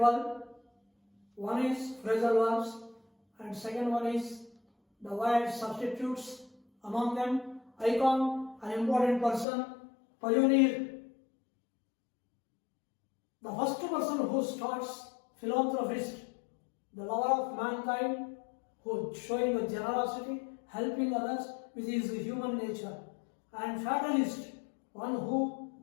One is phrasal verbs, and second one is the word substitutes. Among them, icon, an important person, pioneer. The first person who starts, philanthropist, the lover of mankind, who showing the generosity, helping others with his human nature, and fatalist, one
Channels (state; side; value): drops out; right; at 9.5 s